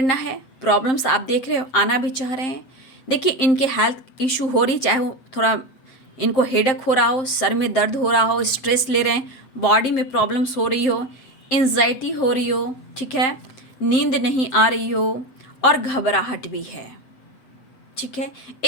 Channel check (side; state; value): right; late; 7.6 ms